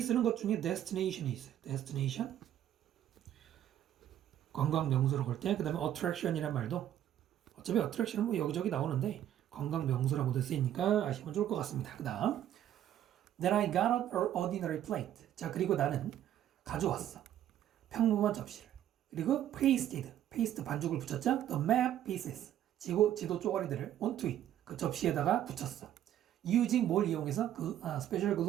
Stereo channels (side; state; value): left; quieter; 11.4 dB